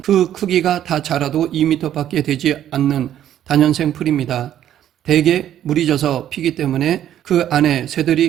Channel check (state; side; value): quieter; left; 11.2 dB